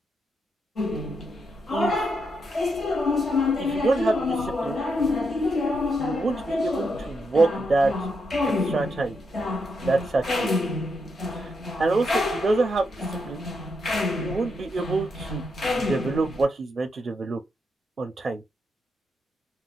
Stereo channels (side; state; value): both; normal; correlation 0.81